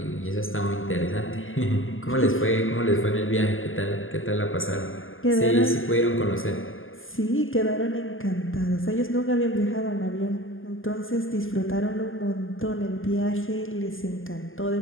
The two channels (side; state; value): right; late; 0.59 ms